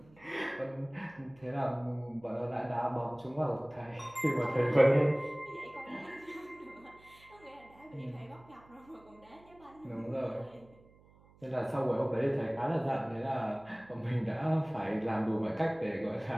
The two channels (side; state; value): right; noise; hum, 26 dB below the sound